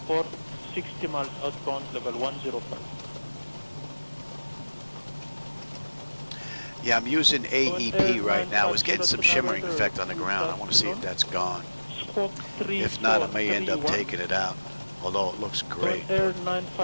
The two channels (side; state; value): both; inverted; correlation -1.00